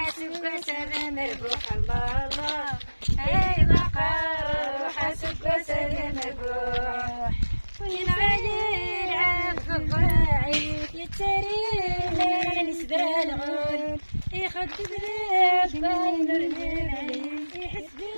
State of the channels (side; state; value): both; inverted; correlation -1.00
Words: سلام الروح الله اي بقر حاسبك سلام الروح وين علي العفو الراعي يتري نسبة الغول يخدم لك باين الرمال يحس